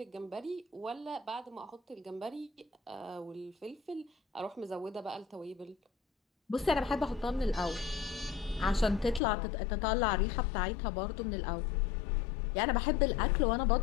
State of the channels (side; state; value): right; drops out; at 9.2 s